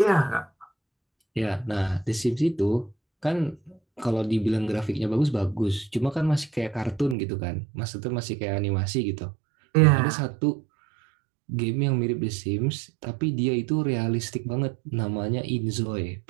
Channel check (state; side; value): drops out; left; at 7.2 s